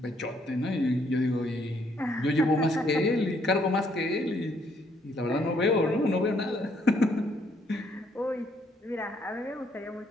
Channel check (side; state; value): both; normal; correlation 0.69